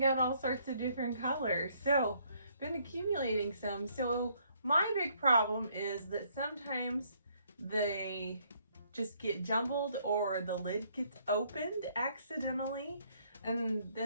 out all sorts of different colors. So been accumulating some. So my big problem is that sometimes they just get jumbled or the lid gets opened accidentally. And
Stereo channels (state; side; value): inverted; both; correlation -0.67